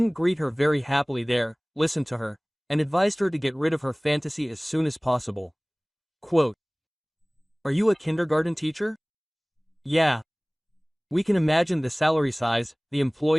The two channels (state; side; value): identical; both; correlation 1.00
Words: greet her very happily there, listened to her, and advised her to get rid of her fantasy as soon as possible. Quote, Are you a kindergarten teacher? Yeah. We can imagine the salary size, the